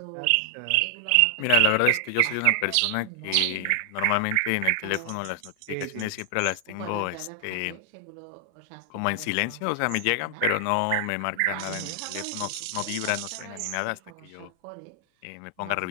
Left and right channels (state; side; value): different; both; correlation 0.00